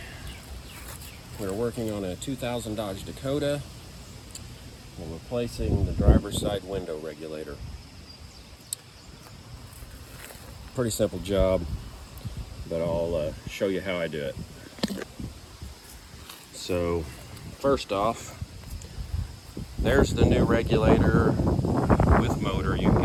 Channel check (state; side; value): identical; both; correlation 1.00